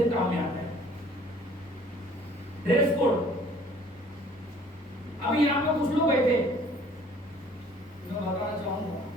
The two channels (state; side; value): normal; both; correlation 0.54